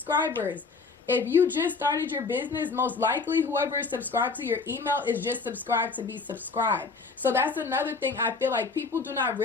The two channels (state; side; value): quieter; right; 4.3 dB